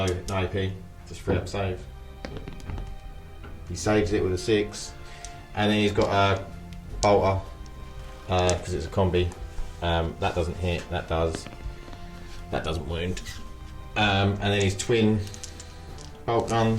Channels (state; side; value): identical; both; correlation 1.00